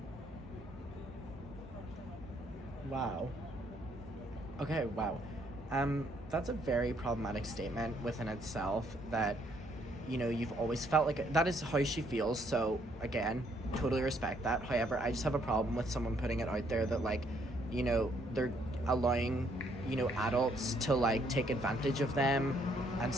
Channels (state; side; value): normal; both; correlation 0.69